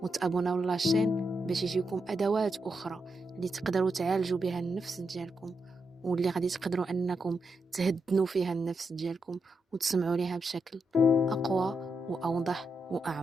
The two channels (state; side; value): normal; both; correlation 0.84